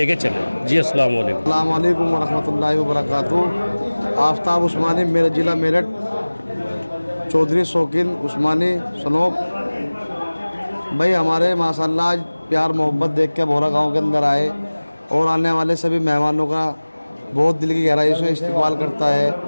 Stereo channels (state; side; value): inverted; both; correlation -1.00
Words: चलें। जी अस्सलाम वालेकुम। अस्सलाम वालेकुम व रहमतुल्लाहि व बरकातुहू। आफ्ताब उस्मानी, मेरा ज़िला मेरठ, चौधरी शौकीन उस्मानी सनोब भाई, हमारे माशाल्लाह आज प्यार मोहब्बत देख के भोरा गांव के अंदर आए और आने वाले सभी मेहमानों का बहुत दिल की गहराई से इस्तेमाल करता है।